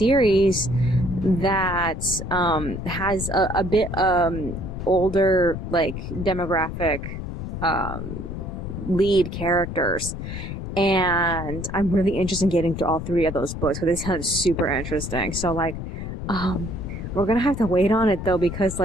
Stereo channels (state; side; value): noise; left; rumble, 7 dB below the sound